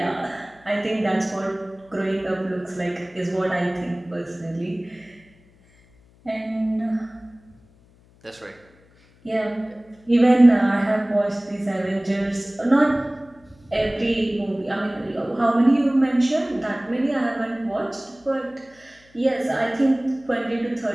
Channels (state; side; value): noise; left; hum, 30 dB below the sound